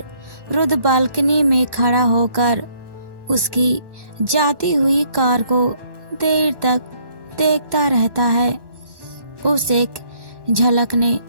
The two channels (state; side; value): late; left; 1.1 ms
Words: रुद बालकनी में खड़ा होकर उसकी जाती हुई कार को देर तक देखता रहता है। उस एक झलक ने